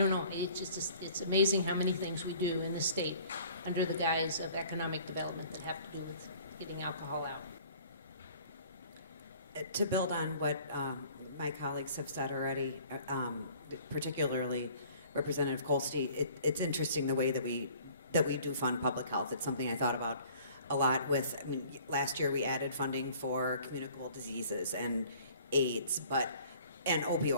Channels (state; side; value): inverted; both; correlation -0.52